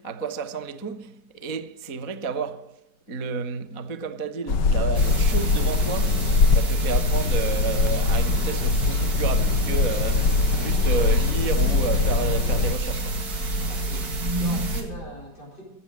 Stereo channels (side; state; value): right; late; 4.5 ms